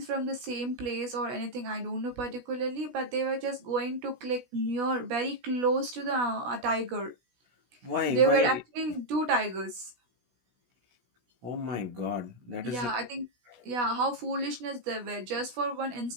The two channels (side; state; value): left; late; 16 ms